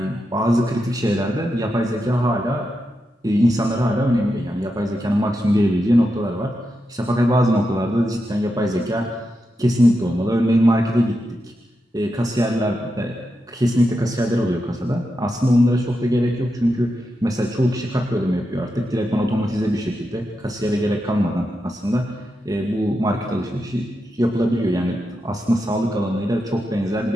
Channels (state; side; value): normal; both; correlation 0.87